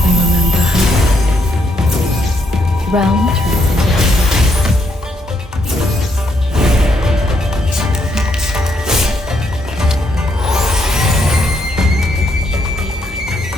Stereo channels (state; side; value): normal; both; correlation 0.75